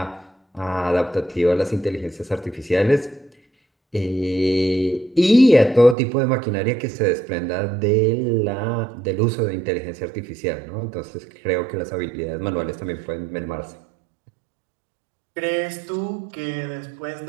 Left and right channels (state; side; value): drops out; left; at 6.0 s